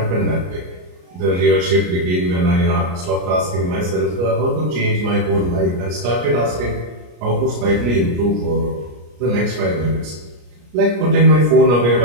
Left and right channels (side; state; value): left; late; 33 ms